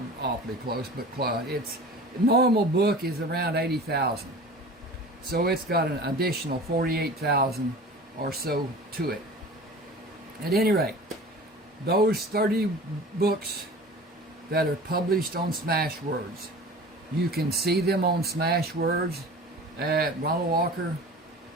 awfully close, but close. Its normal book is around 80,000, so it's got an additional 48,000 or so to it. At any rate, those 30 books that are published on Smashwords, you can see them on Smashwords at Ronald Walker.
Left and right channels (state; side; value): normal; both; correlation 0.39